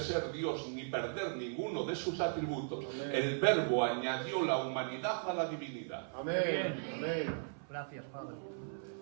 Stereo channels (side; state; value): left; silent; 53 dB below the other